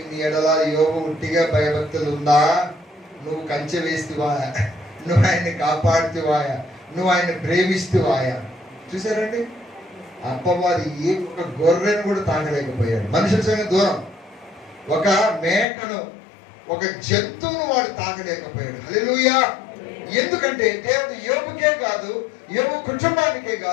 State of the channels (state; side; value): drops out; right; at 15.7 s